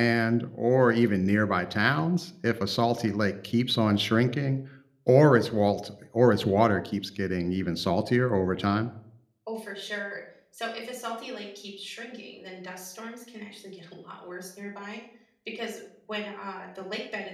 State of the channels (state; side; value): identical; both; correlation 1.00